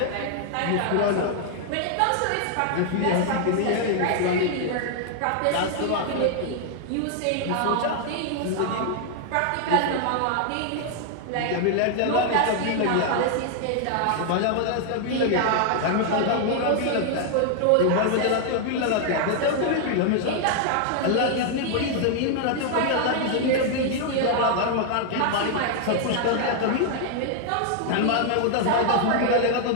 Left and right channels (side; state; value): both; different; correlation 0.00